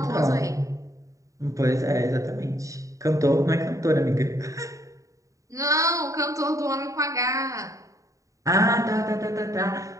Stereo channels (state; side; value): late; left; 0.16 ms